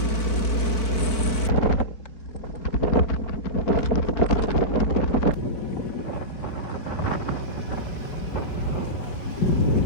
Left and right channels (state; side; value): late; right; 4.4 ms